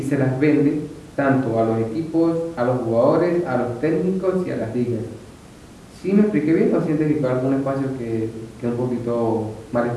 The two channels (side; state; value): both; identical; correlation 1.00